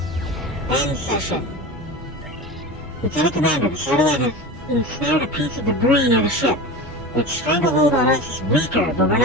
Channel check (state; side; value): normal; both; correlation 0.29